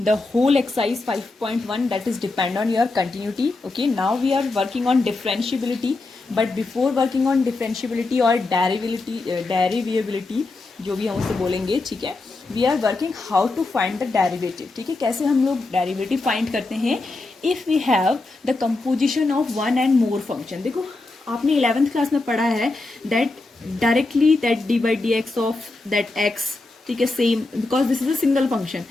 the whole exercise 5.1 that is depend on your continuity. Okay, now we are working on differentiability, but before working on differentiability or derivability जो भी हम उसे बोलेंगे, ठीक है, we are working how to find the derivative. ठीक है, कैसे हम लोग डेरिवेटिव फाइंड करते हैं if we have the composition of one and more function. देखो आपने 11th क्लास में पढ़ा है that directly that d by d x of that x, ठीक है, same because this is a single function.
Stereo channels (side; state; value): right; quieter; 3.3 dB